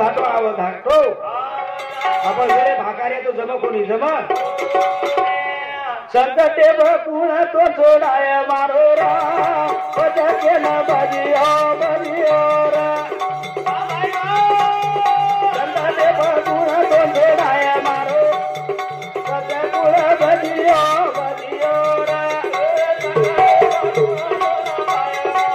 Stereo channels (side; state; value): both; identical; correlation 1.00